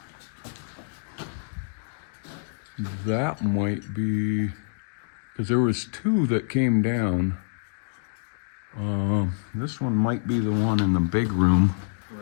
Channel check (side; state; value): right; silent; digital silence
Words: that might be, because there was two that came down. This one might be the one in the big room.